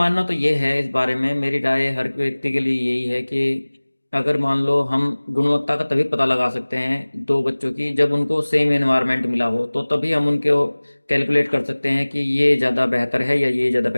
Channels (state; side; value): inverted; both; correlation -1.00